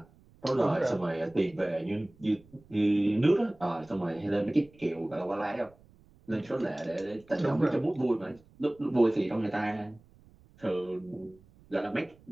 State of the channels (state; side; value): noise; right; rumble, 27 dB below the sound